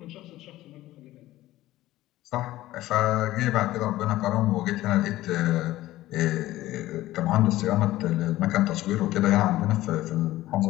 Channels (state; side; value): quieter; right; 15.9 dB